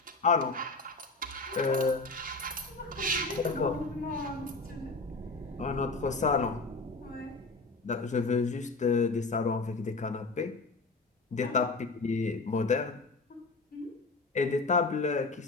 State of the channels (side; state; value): right; quieter; 3.6 dB